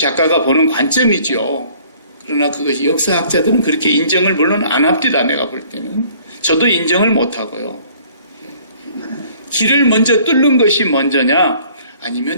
보는 관점이죠. 그러나 그것이 역사학자들은 그렇게 인정을 물론 안 합니다. 내가 볼 때는. 저도 인정을 못 하고요. 길을 먼저 뚫는 것이 먼저냐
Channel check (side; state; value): both; inverted; correlation -0.56